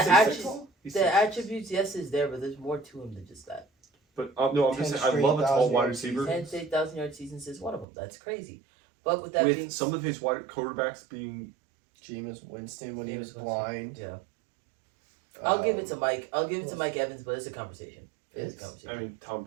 attributes- He's the 6'6". attributes. Yes, is there, but there's more to him than just that. But no, I'm just 10 saying I love a tall 1,000 wide yard receiver. season. 10 to 8,000-yard seasons is one of them. That's crazy. But with that With being some of his wide quarterbacks being Jameis Winston when he Jameis was Winston. blind. yeah, I'll give it to Um, Mike. I'll give it to who Mike Evans, but it's a conversation. It's a It's- conversation. I mean Tom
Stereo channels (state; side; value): drops out; left; at 7.9 s